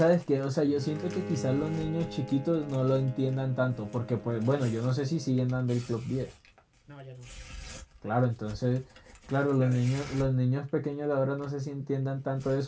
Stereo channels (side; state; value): both; identical; correlation 1.00